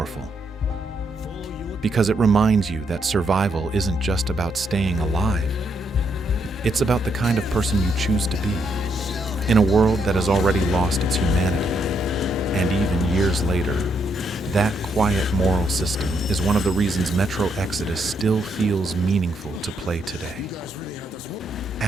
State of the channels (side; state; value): both; normal; correlation 0.76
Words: Because it reminds you that survival isn't just about staying alive. It's about the kind of person you choose to be, in a world that has already lost its humanity. And even years later, that quiet moral system is one of the reasons Metro Exodus still feels meaningful to play today.